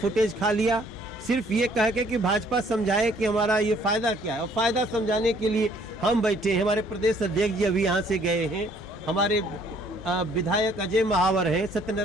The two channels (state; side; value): normal; both; correlation 0.61